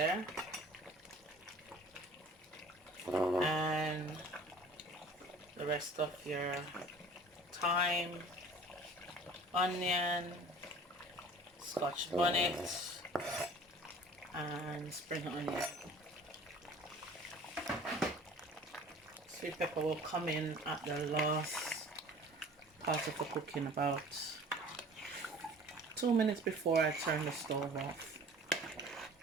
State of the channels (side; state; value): both; normal; correlation 0.47